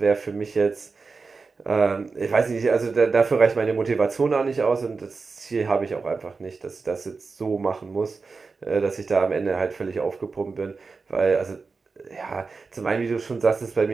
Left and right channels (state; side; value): quieter; left; 4.4 dB